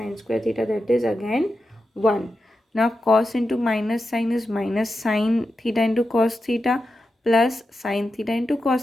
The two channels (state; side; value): normal; both; correlation 0.90